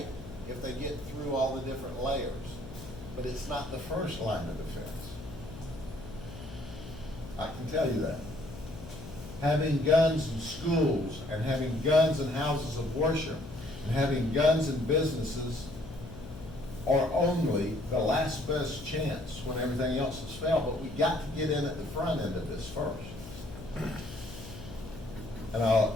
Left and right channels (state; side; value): noise; left; hum, 13 dB below the sound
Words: if they get through all the different layers, but it's not the first line of defense. I can tell you that. Having guns in schools and having guns in houses of worship and having guns in businesses are only the last best chance when everything else has failed, but we got to get in at the front end of this first. And